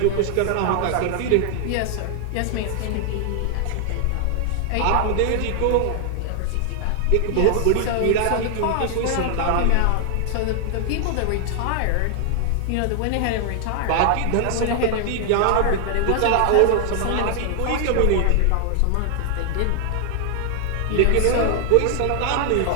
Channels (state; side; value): different; both; correlation 0.00